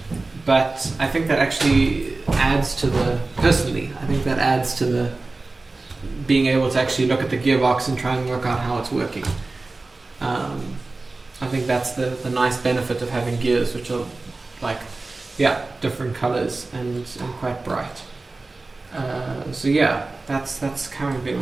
but I think that actually adds to personally, I think that adds to the being able to actually look at the gearbox and try and work out how it's working. I think that's the nice benefit of having gears which are like, yeah, different colors and quite bright. So yeah, that's currently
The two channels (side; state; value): left; quieter; 3.4 dB